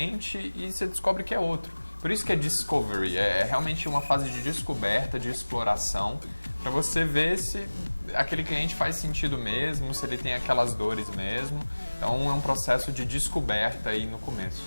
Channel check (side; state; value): both; inverted; correlation -1.00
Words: e você descobre que é outro. Por isso que é Discovery, é realmente uma fase de descoberta, de exploração, para você ver se aquele cliente faz sentido mesmo, se ele tem aquelas dores mesmo. Então é um processo de descoberta aí no começo.